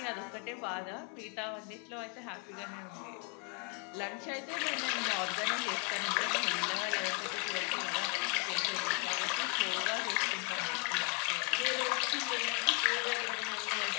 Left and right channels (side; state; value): right; quieter; 33.3 dB